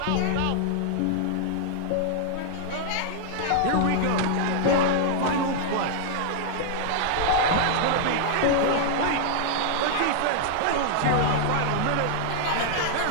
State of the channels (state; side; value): different; both; correlation -0.01